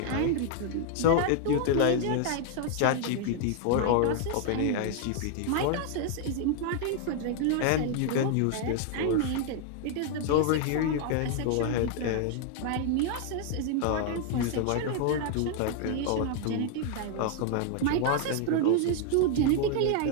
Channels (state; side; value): different; both; correlation 0.00